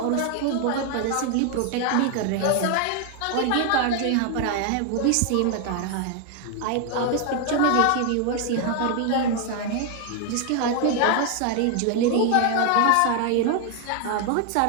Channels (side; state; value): both; different; correlation 0.00